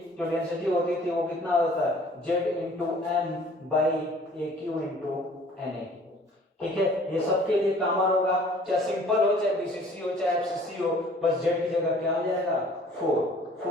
थी वो कितना होता है Z into M by A cube into N A. ठीक है, ये सबके लिए कॉमन होगा, चाहे सिंपल हो चाहे बीसीसी हो चाहे एफसीसी हो, बस जेड की जगह क्या हो जाएगा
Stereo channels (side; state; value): both; normal; correlation 0.53